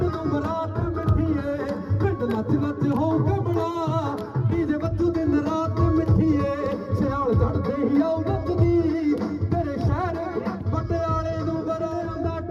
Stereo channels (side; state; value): both; identical; correlation 1.00